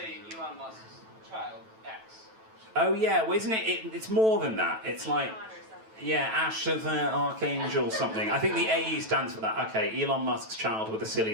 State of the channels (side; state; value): left; late; 9.1 ms